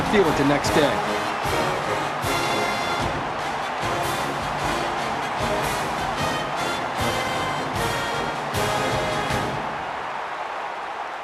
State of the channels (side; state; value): both; identical; correlation 1.00